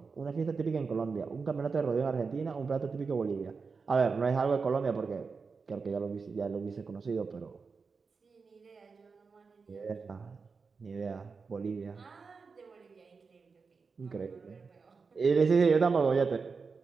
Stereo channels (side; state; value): left; quieter; 4.9 dB